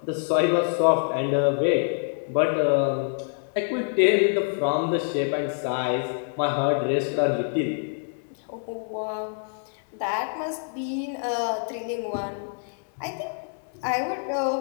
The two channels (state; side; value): silent; right; digital silence